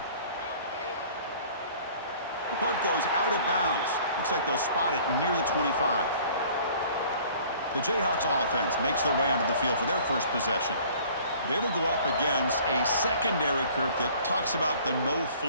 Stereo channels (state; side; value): inverted; both; correlation -0.51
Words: The punt goes out of bounds. Looks like they'll spot it near the 25. The Jayhawks offense makes their way onto the field for their 1st possession. They will go up against a secondary, Kirk, that talks about the